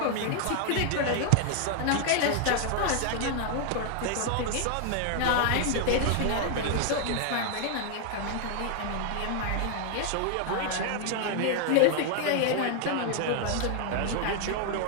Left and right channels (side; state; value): both; different; correlation 0.00